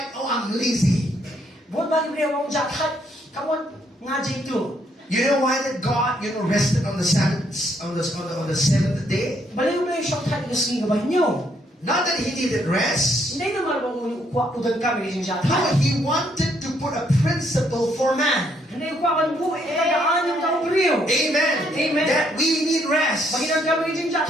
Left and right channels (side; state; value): both; normal; correlation 0.71